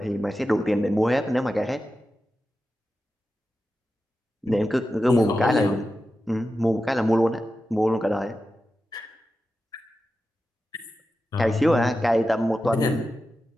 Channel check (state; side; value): normal; both; correlation 0.92